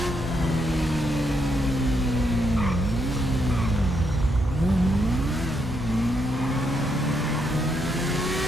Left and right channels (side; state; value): both; normal; correlation 0.78